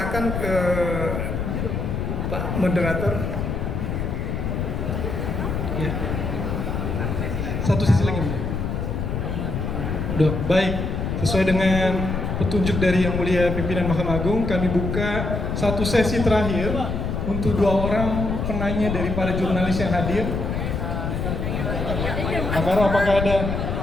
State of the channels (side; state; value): left; noise; rumble, 2 dB below the sound